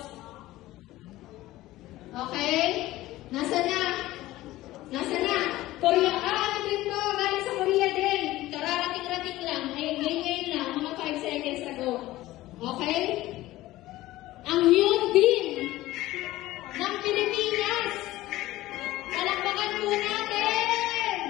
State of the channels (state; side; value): quieter; right; 16.8 dB